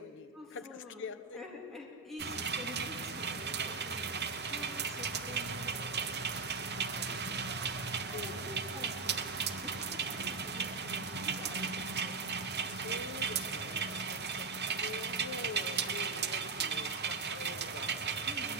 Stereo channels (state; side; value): quieter; left; 4.5 dB